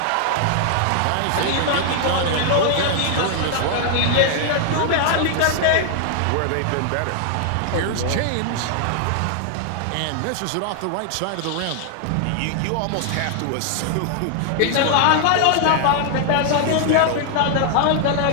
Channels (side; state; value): both; different; correlation 0.00